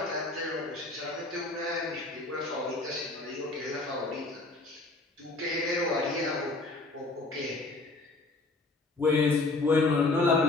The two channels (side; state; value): right; quieter; 3.2 dB